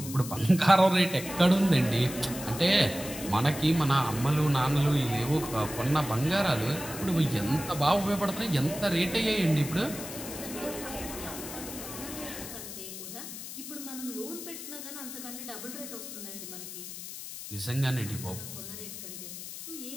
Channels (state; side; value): noise; left; hiss, 10 dB below the sound